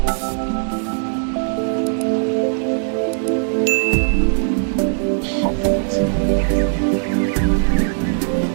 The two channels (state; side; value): silent; left; digital silence